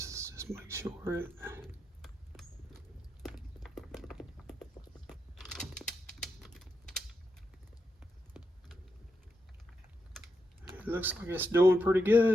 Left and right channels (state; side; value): normal; both; correlation 0.84